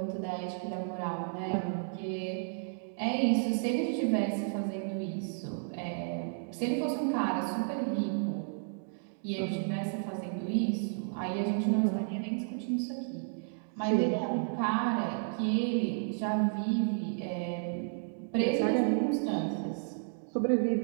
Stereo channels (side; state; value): left; silent; digital silence